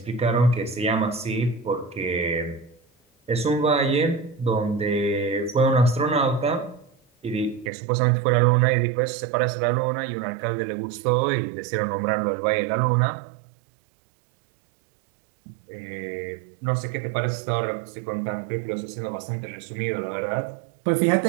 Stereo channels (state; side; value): drops out; left; at 7.7 s